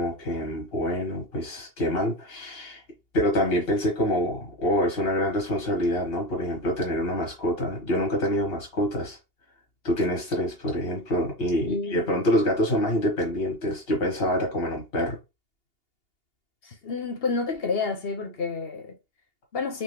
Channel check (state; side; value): late; right; 2.8 ms